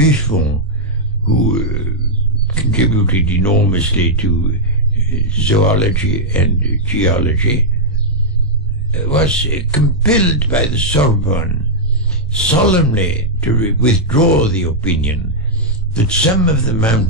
who contributed enormously to zoology and geology, was compelled by the Sorbonne solemnly to withdraw the opinion that some of the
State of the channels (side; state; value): both; normal; correlation -0.06